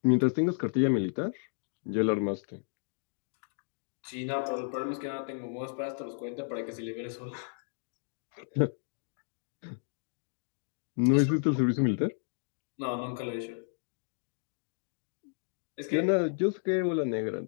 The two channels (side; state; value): right; silent; 56 dB below the other